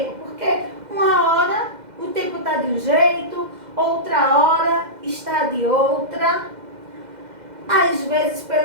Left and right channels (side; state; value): left; late; 2.1 ms